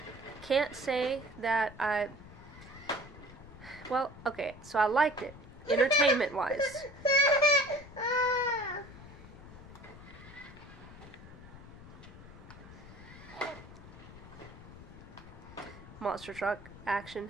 can't say that well, okay, so I liked it, entertainment-wise. Monster truck action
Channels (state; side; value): noise; left; rumble, 17 dB below the sound